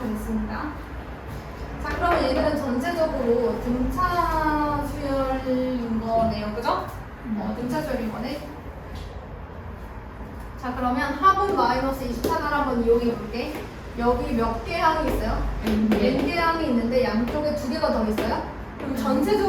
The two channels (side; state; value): both; identical; correlation 1.00